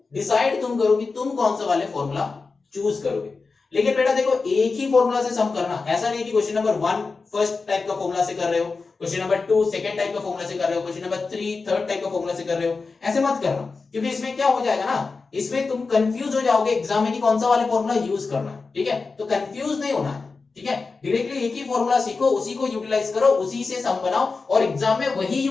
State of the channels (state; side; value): quieter; right; 4.3 dB